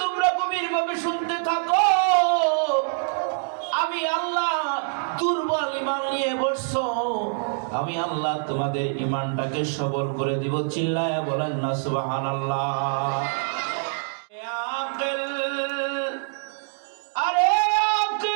তোমরা গভীরভাবে শুনতে থাকো, আমি আল্লাহ দুর্বল ঈমান নিয়ে বসছো, আমি আল্লাহ তোমাদের ঈমানটাকে সবল করে দিব। চিল্লায়া বলেন না সুবহানাল্লাহ। আকিল, আরে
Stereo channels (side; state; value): left; silent; digital silence